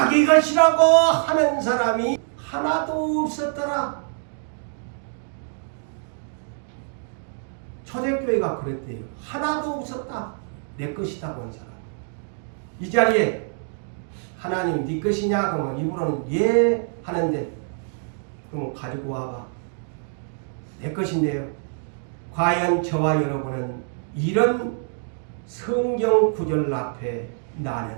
것이라고 하는 사람이 하나도 없었더라. 초대교회가 그랬대요. 하나도 없었다. 내 것이다고 한 사람. 이 자리에 하나님 네 것이냐? 그러면 입으로는 예 하는데 그럼 가지고 와봐. 내 것인데요. 과연 저와 여러분은 이런 성경 구절 앞에 나는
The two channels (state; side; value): silent; left; 62 dB below the other